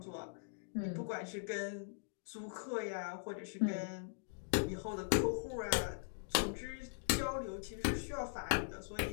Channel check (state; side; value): silent; right; digital silence